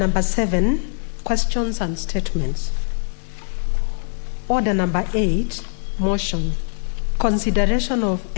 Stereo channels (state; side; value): silent; right; digital silence